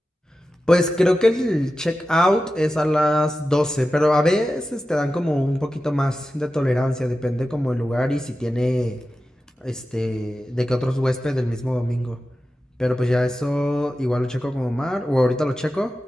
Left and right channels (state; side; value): normal; both; correlation 0.93